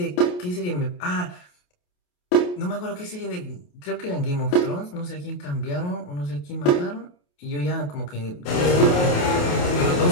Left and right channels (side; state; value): right; late; 28 ms